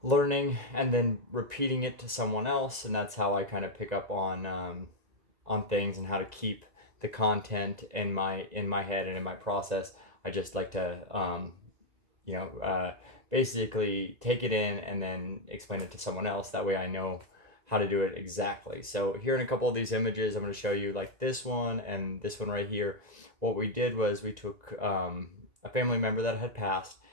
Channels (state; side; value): late; left; 1.9 ms